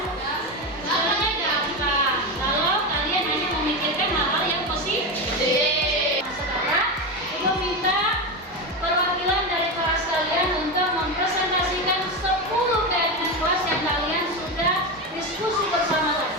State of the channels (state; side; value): normal; both; correlation 0.16